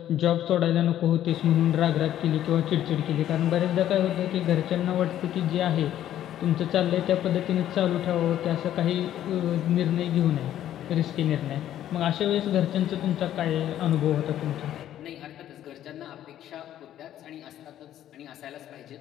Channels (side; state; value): right; quieter; 11.8 dB